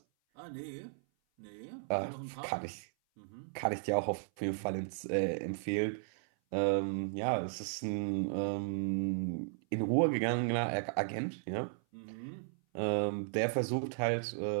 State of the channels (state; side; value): silent; left; 54 dB below the other